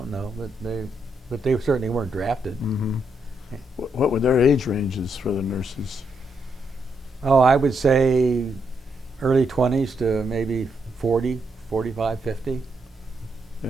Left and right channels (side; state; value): both; normal; correlation 0.79